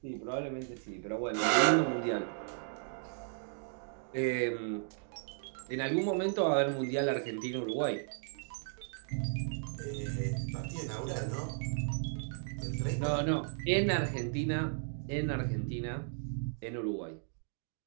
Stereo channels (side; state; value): left; silent; digital silence